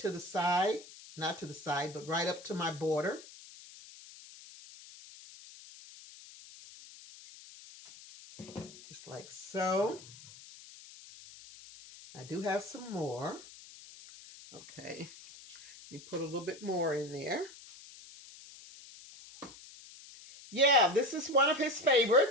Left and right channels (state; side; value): noise; left; hiss, 18 dB below the sound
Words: the side. Not to the side, but right up to my border. Just like so. I do have some more. Okay. Let me put a little bit more in there. Yeah, this is one of his